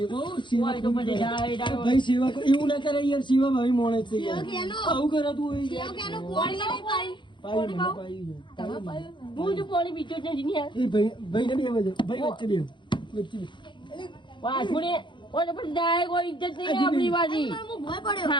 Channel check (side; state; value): right; late; 0.23 ms